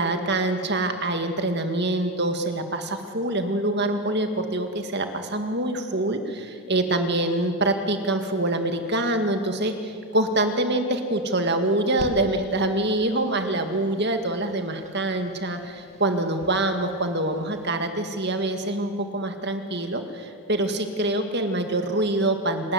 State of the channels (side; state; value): both; normal; correlation 0.08